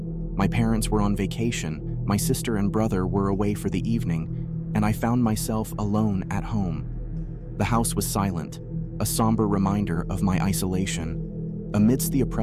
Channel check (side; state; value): both; identical; correlation 1.00